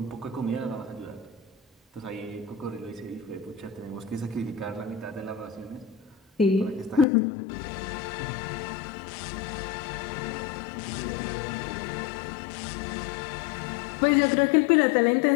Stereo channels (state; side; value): drops out; right; at 7.1 s